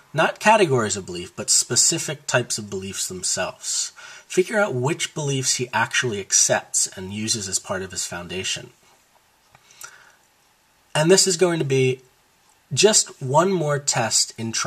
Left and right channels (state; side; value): identical; both; correlation 1.00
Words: not categories of belief, but specific types of beliefs themselves. Figure out which beliefs he actually accepts and uses as part of his foundation. And this is going to be just one more test in